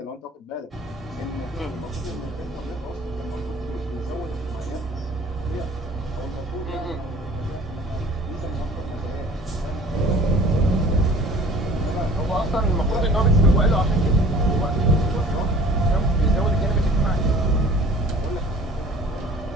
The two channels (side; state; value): both; normal; correlation 0.49